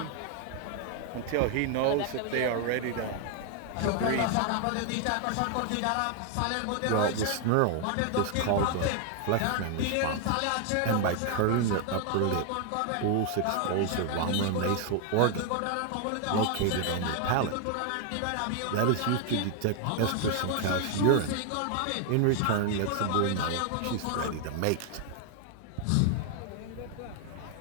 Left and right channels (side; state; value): both; different; correlation 0.00